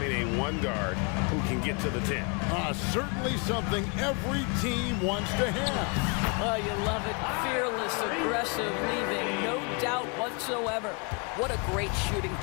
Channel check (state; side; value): quieter; right; 34.2 dB